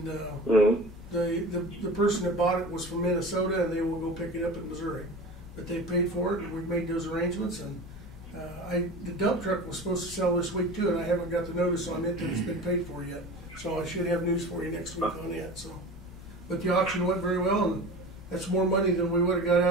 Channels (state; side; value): normal; both; correlation 0.35